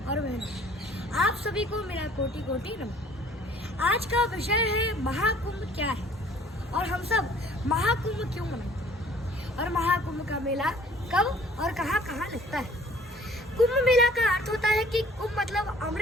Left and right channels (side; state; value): both; normal; correlation 0.54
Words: बहनों, आप सभी को मेरा कोटि कोटि नमन। आज का विषय है महाकुंभ क्या है और हम सब महाकुंभ क्यों मनाते और महाकुंभ का मेला कब और कहाँ कहाँ लगता है। कुंभ मेला का अर्थ होता है कि कुंभ मतलब